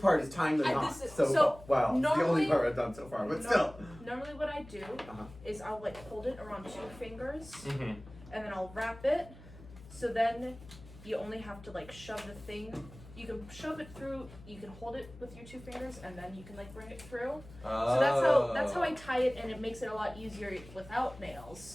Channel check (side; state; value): left; noise; hum, 18 dB below the sound